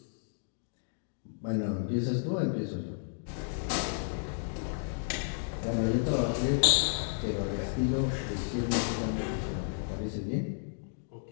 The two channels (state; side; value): silent; right; digital silence